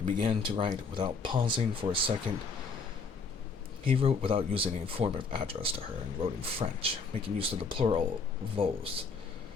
began to write without pausing for a second. He wrote without using any form of address to her, and wrote in French, making use of the plural vos,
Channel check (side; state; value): right; quieter; 4.7 dB